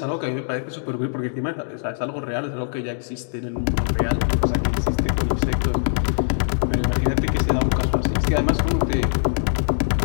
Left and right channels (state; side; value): silent; right; digital silence